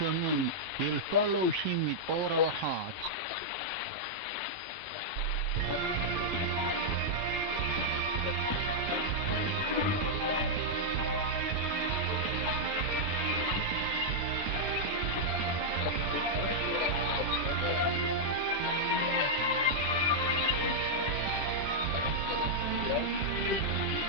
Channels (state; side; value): normal; both; correlation -0.05